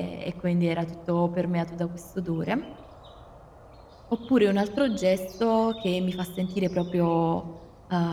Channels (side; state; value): both; identical; correlation 1.00